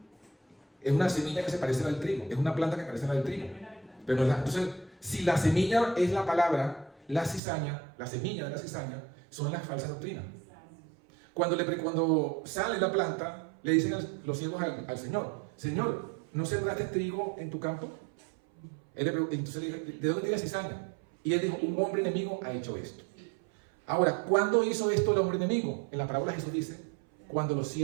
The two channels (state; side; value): drops out; left; at 7.4 s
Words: es una semilla que se parece a la del trigo. Es una planta que parece a la del trigo. Pero no es la. Entonces, si la semilla es la palabra, la cizaña, la semilla de la cizaña, son las falsas doctrinas. Cuando sale la planta, le dicen los siervos al Señor, Señor, ¿no sembraste trigo en tu campo? Entonces le dijo, ¿de dónde tiene cizaña? Y él dijo, un hombre enemigo ha hecho esto. Ahora, ¿cuándo hizo esto el hombre enemigo? En la parábola Jesús dice, cuando los